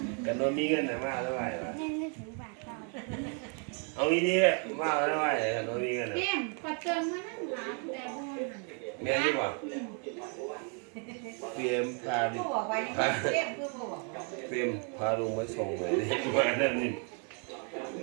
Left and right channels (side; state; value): left; quieter; 39.6 dB